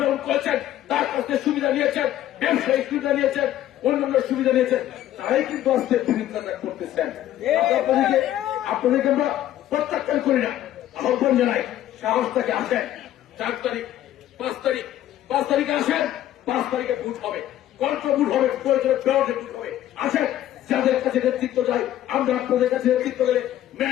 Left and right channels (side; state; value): right; quieter; 12.7 dB